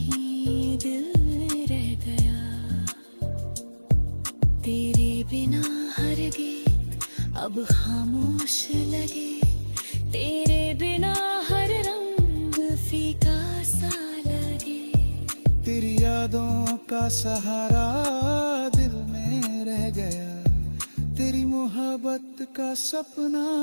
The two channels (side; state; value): both; inverted; correlation -1.00